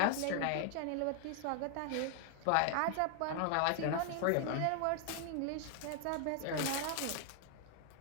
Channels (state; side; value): different; both; correlation 0.00